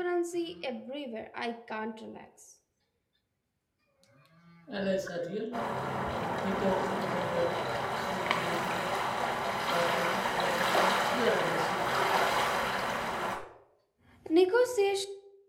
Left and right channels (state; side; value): identical; both; correlation 1.00